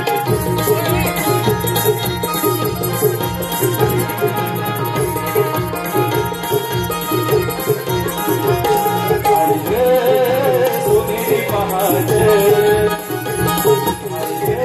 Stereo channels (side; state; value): both; identical; correlation 1.00